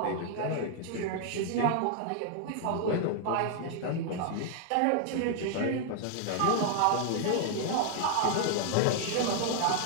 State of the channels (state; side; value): different; both; correlation 0.00